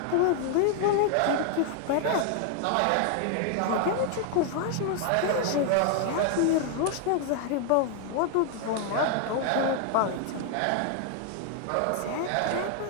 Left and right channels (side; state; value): both; different; correlation 0.00